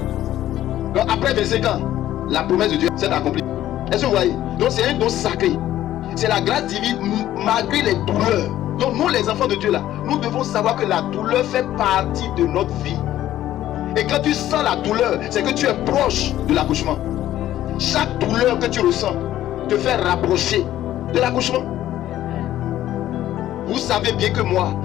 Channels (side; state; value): right; quieter; 13.1 dB